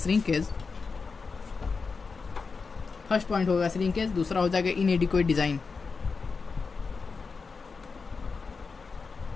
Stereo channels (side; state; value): right; quieter; 4.7 dB